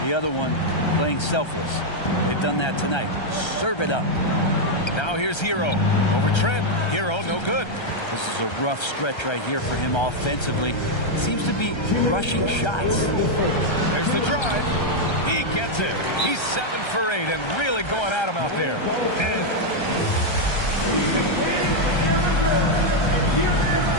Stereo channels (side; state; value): right; late; 1.3 ms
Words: The other one, playing selfless. They've done that tonight. Serve it up. Now here's Hero. Over Trent. Hero, no good. This is a rough stretch right here for him offensively. Seems to be rushing shots. There's the drive. He gets it. He's 7 for 8 and really going at him out there.